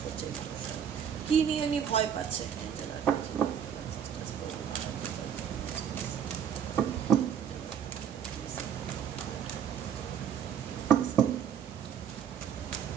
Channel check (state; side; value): quieter; left; 8.3 dB